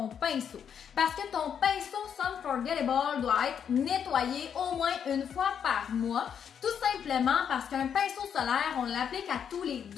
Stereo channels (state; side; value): quieter; right; 8.0 dB